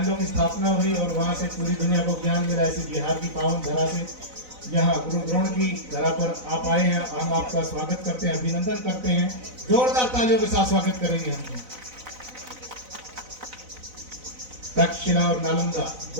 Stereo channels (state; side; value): late; left; 4.0 ms